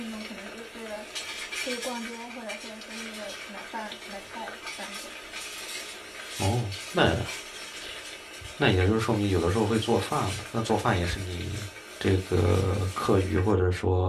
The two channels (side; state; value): both; identical; correlation 1.00